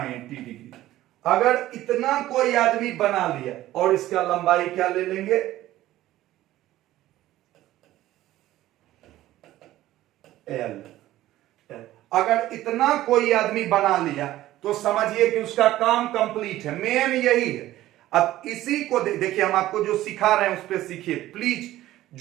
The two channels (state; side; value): quieter; left; 14.9 dB